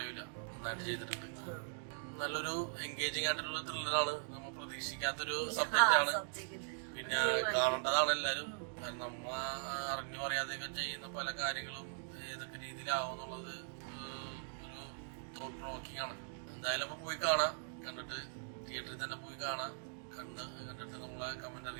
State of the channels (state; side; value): silent; left; digital silence